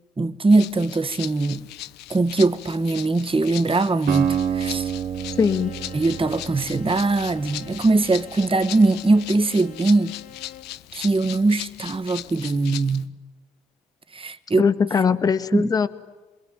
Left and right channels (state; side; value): normal; both; correlation 0.83